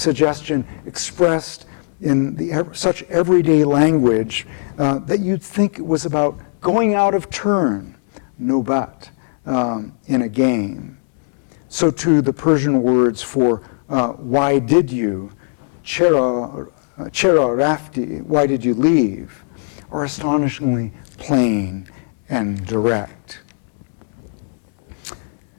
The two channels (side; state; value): right; silent; 67 dB below the other